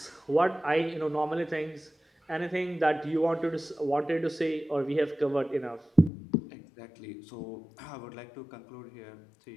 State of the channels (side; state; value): right; drops out; at 6.1 s